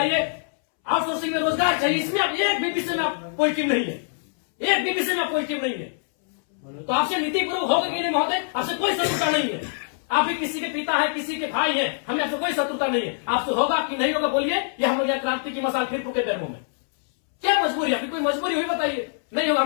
आउटसोर्सिंग में रोजगार चाहिए, इसमें आप एक भी विषय में आप पॉजिटिव नहीं है, एक भी विषय में आप पॉजिटिव नहीं है। तो आपसे नीति पूर्वक होगा कि नहीं महोदय, आपसे कोई शत्रुता नहीं है। आप भी किसी के पिता है, किसी के भाई है, हमें आपसे कोई शत्रुता नहीं है। आपसे होगा कि नहीं होगा बोलिए, ये हम लोग यहाँ क्रांति की मसाल फिर फूके पैरों में। क्या मजबूरी, आपकी कोई मजबूरी हुई बताइए, नहीं होगा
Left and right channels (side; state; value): right; silent; 63 dB below the other